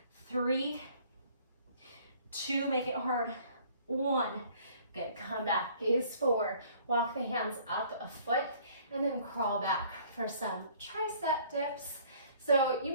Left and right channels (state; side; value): inverted; both; correlation -0.56